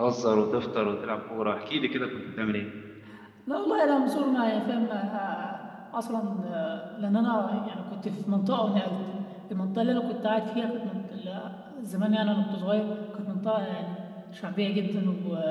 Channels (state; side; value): identical; both; correlation 1.00